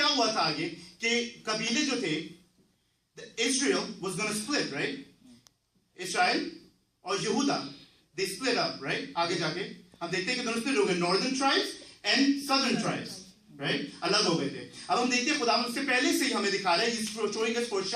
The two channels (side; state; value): both; identical; correlation 1.00